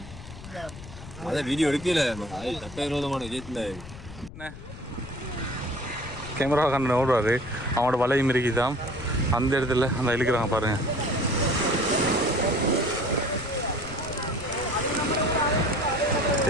அதான் வீடியோ எடுக்கல சட்டவிரோதமான விஷயத்துல கேமரா கண்ணன் ஓடுவார், அவனோட வலையும் இருக்குதான் அந்த இடத்துல அந்த இழுக்கிறாங்க பாருங்க.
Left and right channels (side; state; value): left; noise; rumble, 14 dB below the sound